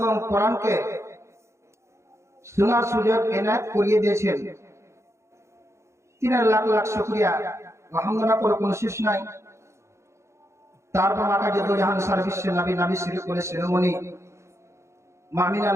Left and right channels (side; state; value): left; late; 0.14 ms